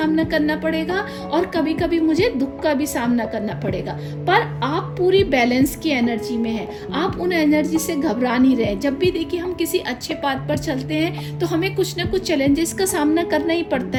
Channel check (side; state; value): both; identical; correlation 1.00